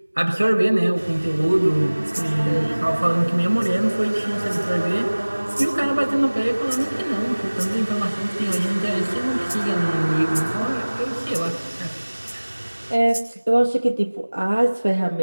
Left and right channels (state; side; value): inverted; both; correlation -1.00